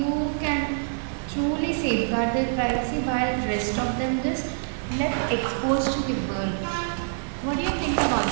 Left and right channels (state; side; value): silent; left; 61 dB below the other